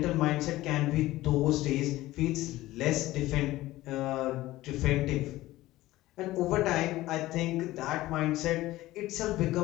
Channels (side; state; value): right; quieter; 16.9 dB